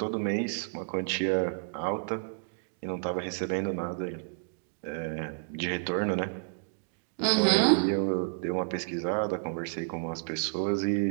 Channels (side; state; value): left; silent; digital silence